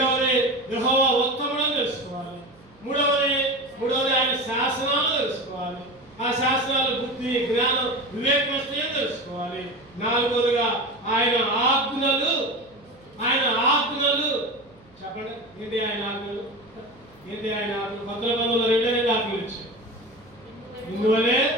యెహోవా ఉత్తముడని తెలుసుకోవాలి. 3వది ఆయన శాసనాలు తెలుసుకోవాలి. ఆ శాసనాలు బుద్ధి జ్ఞానం వివేకం వస్తాయని తెలుసుకోవాలి. 4వదిగా ఆయన ఆజ్ఞలు. చెప్పండి. ఏంటి ఆయన ఆజ్ఞలు? కొత్త నిబంధనలో 2 ఆజ్ఞలు ఇచ్చారు.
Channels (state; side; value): noise; right; hum, 28 dB below the sound